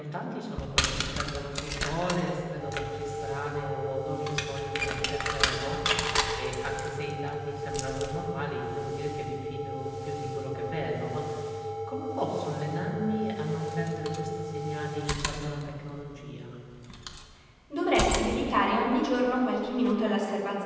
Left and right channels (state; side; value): identical; both; correlation 1.00